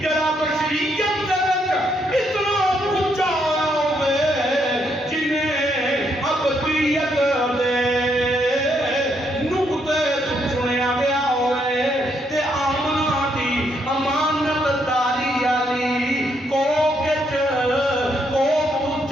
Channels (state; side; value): normal; both; correlation 0.75